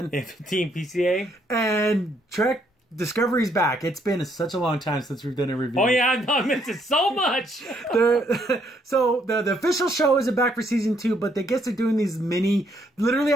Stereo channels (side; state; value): both; normal; correlation 0.70